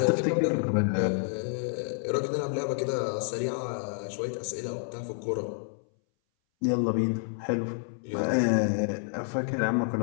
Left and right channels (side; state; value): right; silent; 59 dB below the other